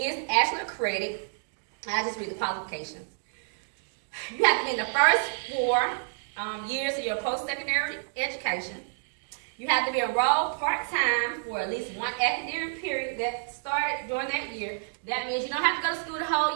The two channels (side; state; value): left; silent; digital silence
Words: actually a credit. I'll just read the qualifications. You have to be in the first 4 years of your post-secondary education. You have to be enrolled part-time for at least one academic period that started during that year. That means you don't have to go to school the